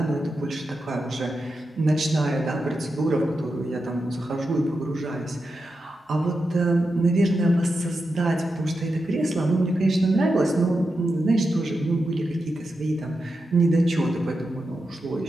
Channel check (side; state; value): both; normal; correlation 0.88